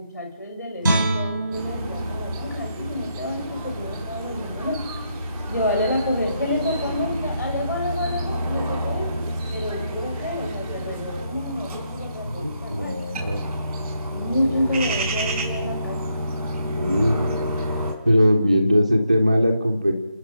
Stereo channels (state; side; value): inverted; both; correlation -0.79